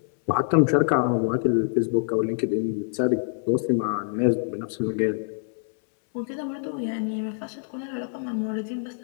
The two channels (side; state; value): right; silent; 61 dB below the other